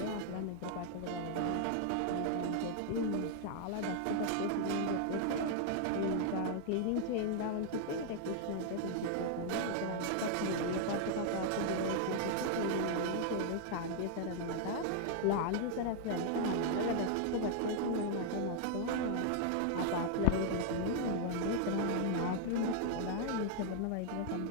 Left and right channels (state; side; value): different; both; correlation 0.00